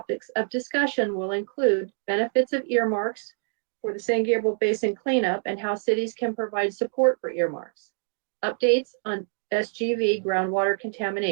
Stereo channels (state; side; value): silent; left; digital silence